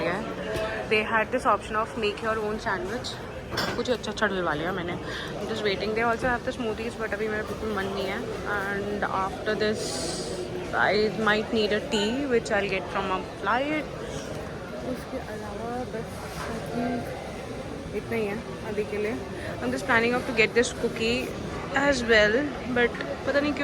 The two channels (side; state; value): both; identical; correlation 1.00